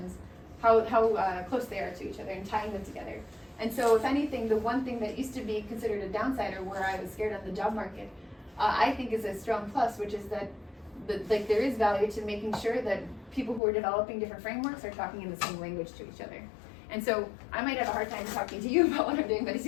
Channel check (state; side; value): drops out; right; at 13.6 s